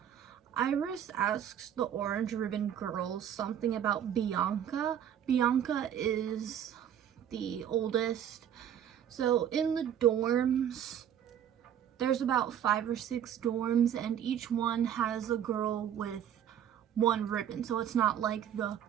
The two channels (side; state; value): left; quieter; 9.7 dB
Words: Iris asks the orange ribbon girls something about Bianca. Bianca is the oldest. So in the dorms, there's about 5 or 6 dorms, and each one has a girl with one ribbon. So it's not like the